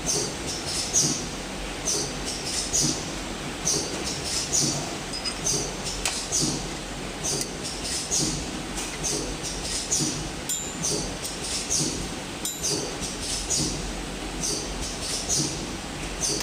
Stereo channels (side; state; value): both; identical; correlation 1.00